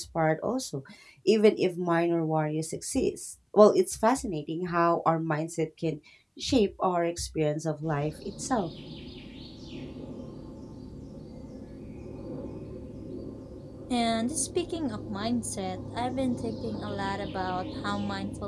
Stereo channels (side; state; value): both; identical; correlation 1.00